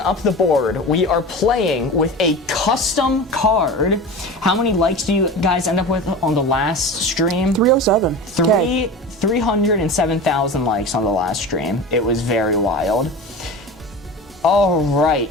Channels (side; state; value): both; normal; correlation 0.31